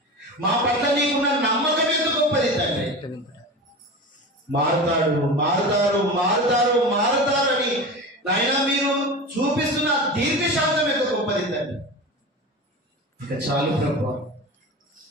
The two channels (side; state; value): both; normal; correlation 0.29